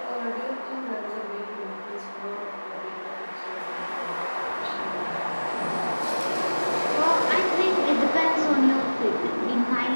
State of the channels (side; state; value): both; inverted; correlation -1.00